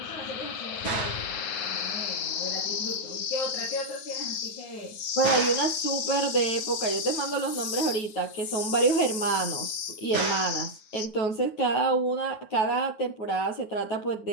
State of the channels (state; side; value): late; right; 9.4 ms